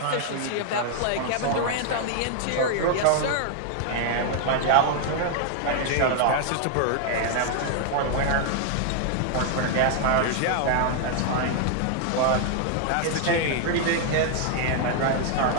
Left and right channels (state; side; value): different; both; correlation 0.00